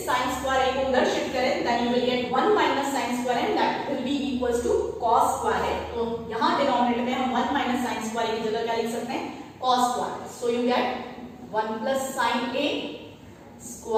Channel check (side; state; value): both; identical; correlation 1.00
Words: sin स्क्वायर a को उधर शिफ्ट करें then you will get 1 minus sin square and that will be equals to cos square a। तो यहां डिनोमिनेटर में हम 1 माइनस sin स्क्वायर a की जगह क्या लिख सकते हैं, cos square. So you get 1 plus sin a